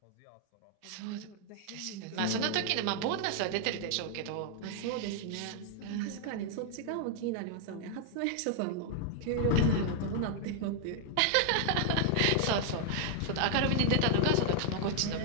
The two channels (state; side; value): different; both; correlation 0.00